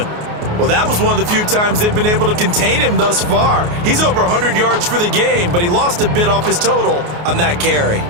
Well, that was one of the few times they've been able to contain him thus far. He's over 100 yards for the game, but he lost a bit off his total on that carry.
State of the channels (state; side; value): late; left; 28 ms